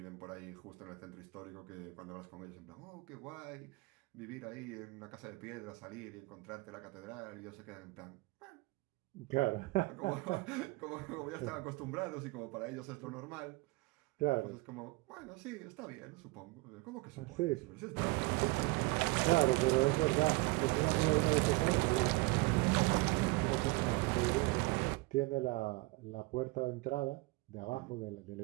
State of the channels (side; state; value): left; quieter; 23.6 dB